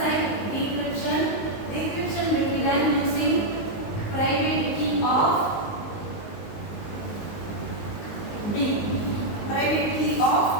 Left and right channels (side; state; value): right; late; 19 ms